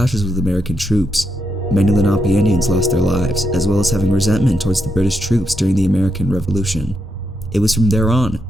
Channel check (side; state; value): both; normal; correlation 0.82